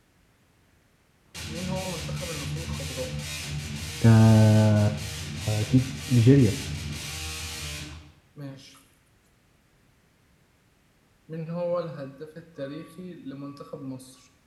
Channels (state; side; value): identical; both; correlation 1.00